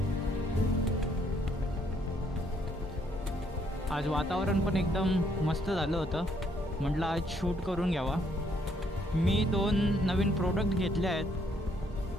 आज वातावरण पण एकदम मस्त झालं होतं. म्हटलं आज शूट करून घ्यावा. मी 2 नवीन प्रोडक्ट घेतले आहेत,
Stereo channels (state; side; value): normal; both; correlation 0.69